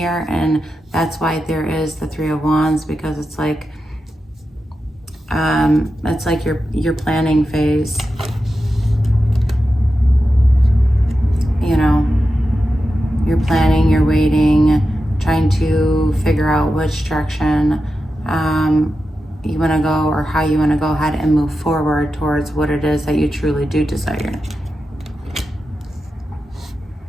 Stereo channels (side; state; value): both; normal; correlation 0.90